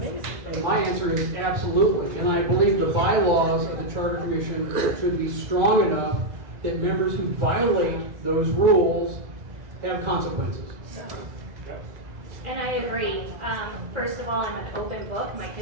My answer is absolutely, and I believe the bylaws of the Charter Commission should be strong enough that members who violate those rules have consequences. And I agree. First of all, I'm an open book. My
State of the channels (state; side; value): late; left; 2.0 ms